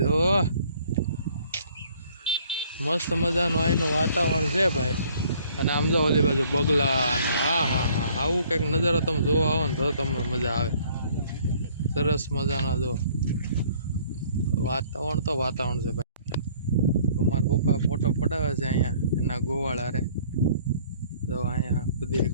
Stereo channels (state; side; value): inverted; both; correlation -0.58